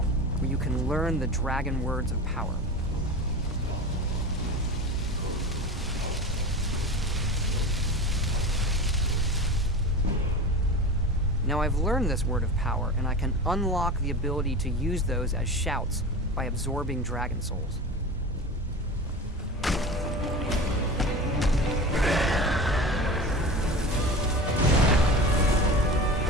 where you can learn the dragon words of power. Now I've learned this word of power, and I can unlock the ability to use those as shouts by absorbing dragon souls.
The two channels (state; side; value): normal; both; correlation 0.31